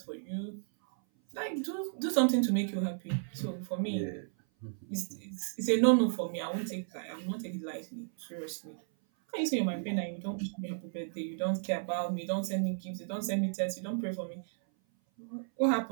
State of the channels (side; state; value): left; silent; 55 dB below the other